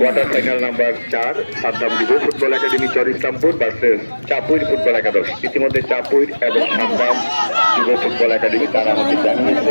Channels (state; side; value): inverted; both; correlation -1.00